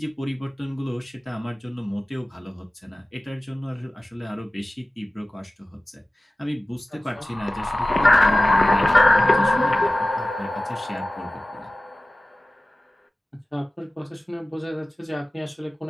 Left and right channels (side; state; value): both; normal; correlation 0.97